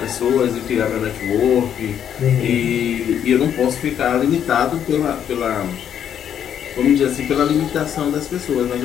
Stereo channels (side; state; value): right; quieter; 9.2 dB